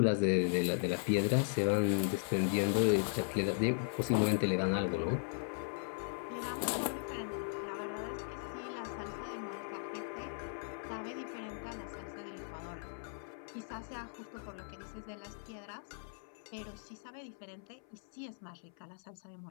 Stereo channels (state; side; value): silent; right; 53 dB below the other